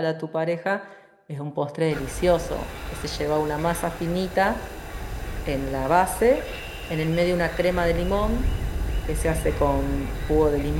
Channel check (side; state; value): both; identical; correlation 1.00